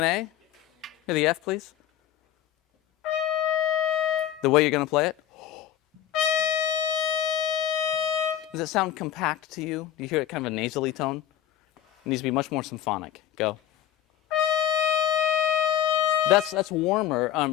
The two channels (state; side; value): quieter; right; 11.1 dB